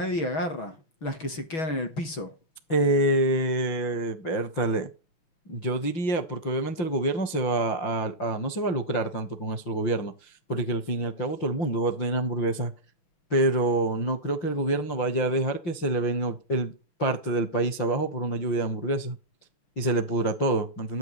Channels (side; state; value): right; late; 5.8 ms